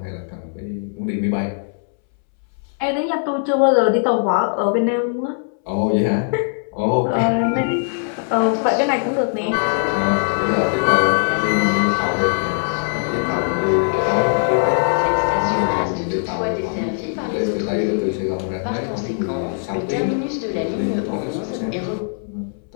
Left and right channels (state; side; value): silent; right; 65 dB below the other